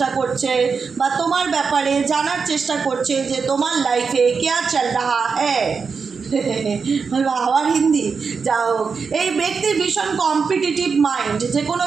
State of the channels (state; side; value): quieter; left; 5.3 dB